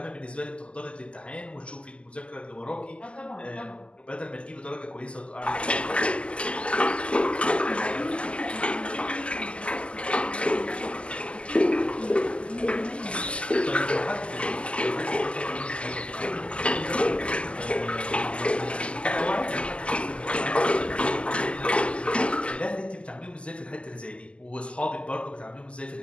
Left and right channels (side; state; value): right; late; 0.054 ms